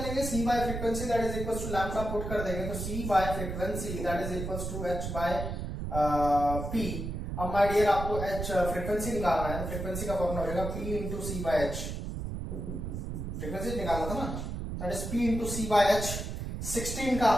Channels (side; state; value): right; noise; rumble, 5 dB below the sound